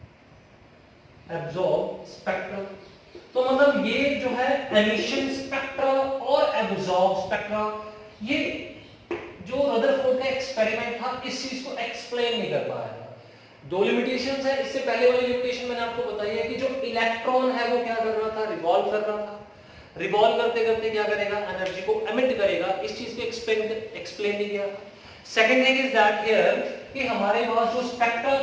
absorb spectrum. तो मतलब ये जो है एमिशन स्पेक्ट्रा और एब्जॉर्ब स्पेक्ट्रा, ये जो रदरफोर्ड का एक्सपेरिमेंट था इस चीज को एक्सप्लेन नहीं कर पाया था। 2 लिमिटेशंस है, इससे पहले वाली लिमिटेशन मैंने आपको बताई है कि जो इलेक्ट्रॉन है वो क्या कर रहा था, रिवॉल्व कर रहा था, रिवॉल्व करते करते क्या करेगा, एनर्जी को एमिट करेगा, इस चीज को एक्सप्लेन नहीं किया। Second thing is that here कि हमारे पास जो स्पेक्ट्रा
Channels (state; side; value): identical; both; correlation 1.00